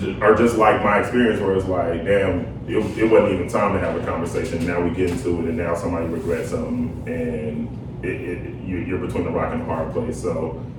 are just like my experience where it's like, damn, it wasn't even time to have a conversation. Now we get into it and now somebody regrets something and you're between the rock and the hard place. So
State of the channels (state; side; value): identical; both; correlation 1.00